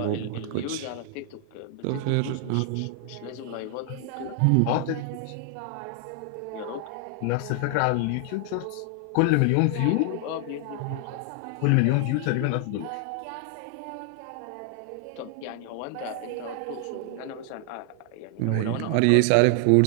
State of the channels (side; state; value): both; different; correlation 0.00